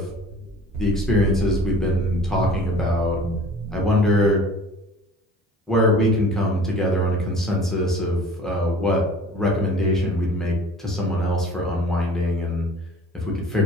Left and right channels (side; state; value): both; normal; correlation 0.46